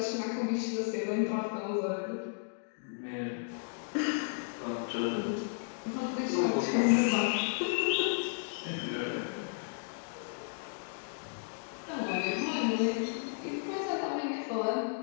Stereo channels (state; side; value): silent; right; digital silence